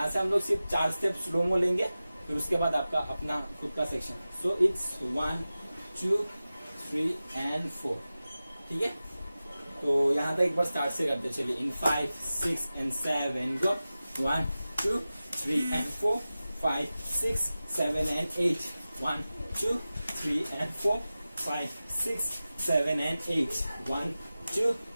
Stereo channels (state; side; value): inverted; both; correlation -0.95